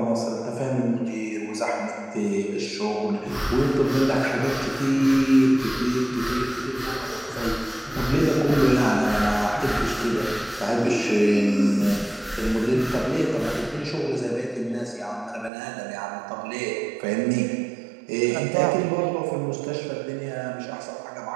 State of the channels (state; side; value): drops out; left; at 15.5 s